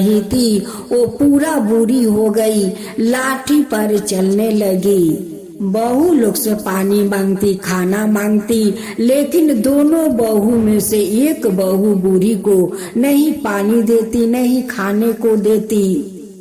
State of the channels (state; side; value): identical; both; correlation 1.00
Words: थी। वो पूरा बूढ़ी हो गई, लाठी पर चलने लगी। बहू लोग से पानी मांगती, खाना मांगती, लेकिन दोनों बहू में से एक बहू बूढ़ी को नहीं पानी देती, नहीं खाने को देती।